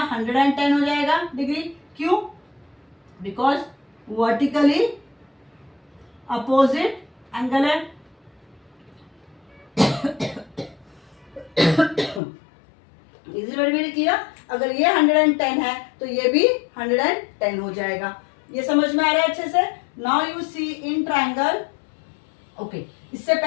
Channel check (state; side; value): drops out; right; at 12.2 s